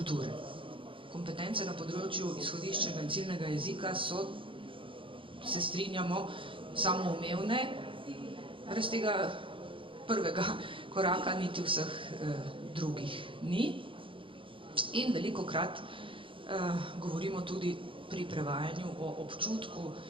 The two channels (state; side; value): late; left; 0.25 ms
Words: Kompetence na področju izhodiščnega in ciljnega jezika so, se strinjamo, samoumevne, brez tega prvega koraka niti vseh drugih ni. In velikokrat govorimo tudi pri prevajanju o občutku